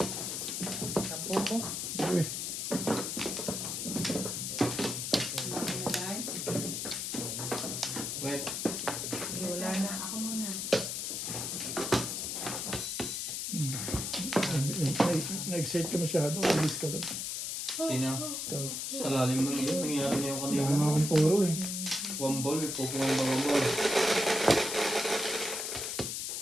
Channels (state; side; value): noise; left; hiss, 3 dB below the sound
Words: Tapo ko. Uy. Ay, Wait. Hindi, wala na. ako muna. Na-excite ka masyado. Release ka doon. Sino? Ikaw. Sa lalim ng iyo, nangyari niya yung kanina. Hindi Wala nga akong puro eh. One ball, may pupungan ba one ball?